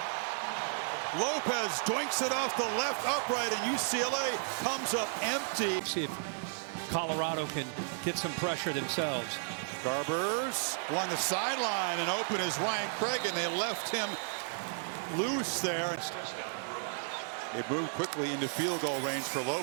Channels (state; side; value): silent; left; 55 dB below the other